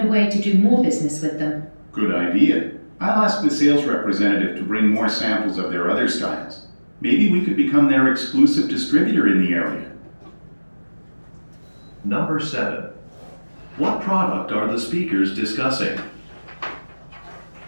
a way to do more business with them. Good idea. I'll ask the sales representative to bring more samples of their other styles. Maybe we could become their exclusive distributor in the area. Number 7. What product are the speakers discussing?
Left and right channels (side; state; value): both; inverted; correlation -1.00